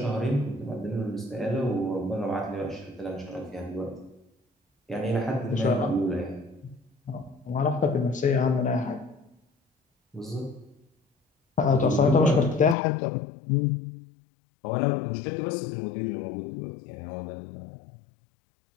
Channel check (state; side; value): drops out; right; at 12.8 s